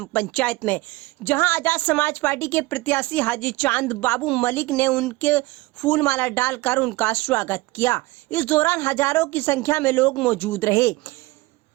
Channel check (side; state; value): left; quieter; 21.1 dB